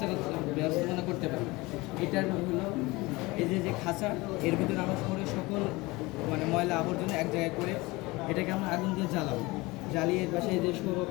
করতে পারি, এটার হলো এই যে খাঁচা, এর ভিতরে আমরা শহরের সকল ময়লা আবর্জনা এক জায়গায় করে এটাকে আমরা আগুন দিয়ে জ্বালাবো, জ্বালিয়ে পাশে যে সৌর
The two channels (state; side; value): quieter; right; 22.5 dB